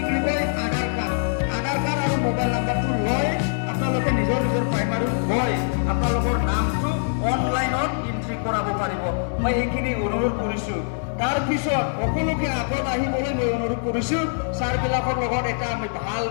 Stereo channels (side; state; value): right; silent; digital silence